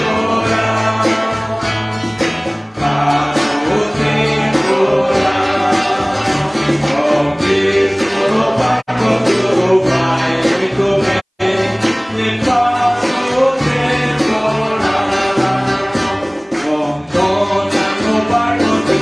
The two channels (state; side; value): identical; both; correlation 1.00